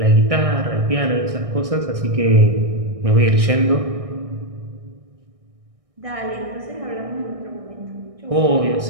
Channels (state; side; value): late; left; 1.6 ms